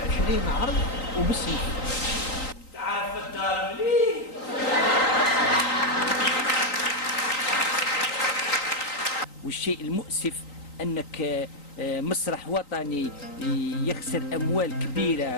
20 عرض وبالسيف. تعرف الدار مليح. والشيء المؤسف أنك مسرح وطني يخسر أموال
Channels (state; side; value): late; right; 3.9 ms